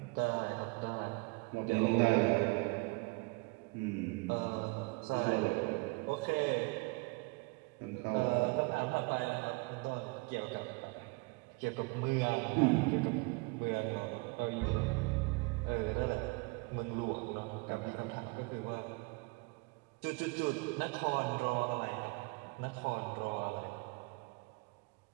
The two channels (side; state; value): left; quieter; 27.5 dB